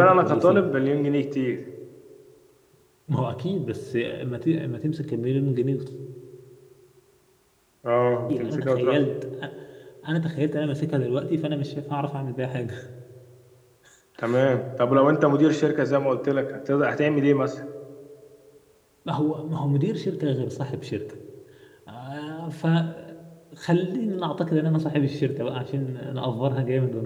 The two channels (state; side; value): identical; both; correlation 1.00